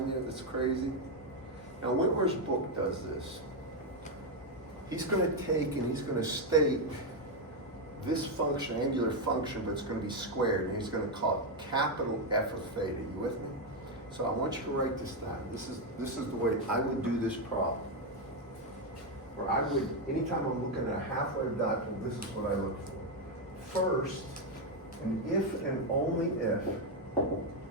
there that's crazy? Now, Whitmer's book does this. He's going to take and he's going to state this function, angular function, but it's going to be squared, and he's going to call it capital F of theta. You with me? So I want you to write this down. This is the way I would do this problem. Where I would, anytime I'm looking at a half-wave dipole, this is what I look for. First, and if and only if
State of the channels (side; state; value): both; normal; correlation 0.04